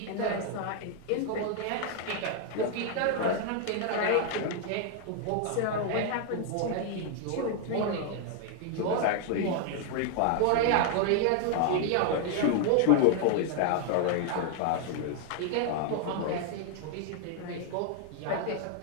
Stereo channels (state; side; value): different; both; correlation 0.00